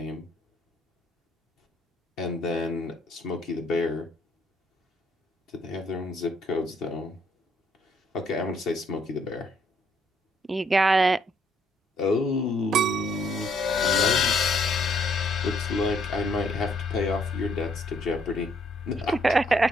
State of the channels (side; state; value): both; normal; correlation 0.68